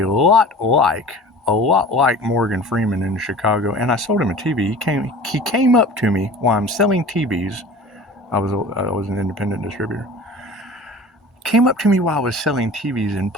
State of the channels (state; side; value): normal; both; correlation 0.41